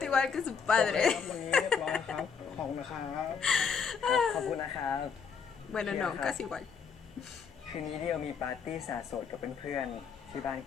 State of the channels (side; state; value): right; quieter; 6.2 dB